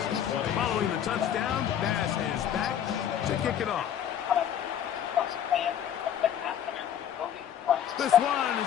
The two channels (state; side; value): quieter; right; 9.6 dB